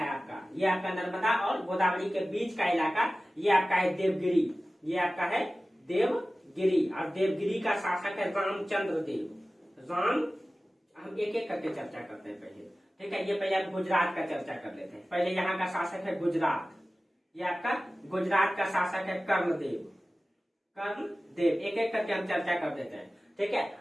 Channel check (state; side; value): normal; both; correlation 0.96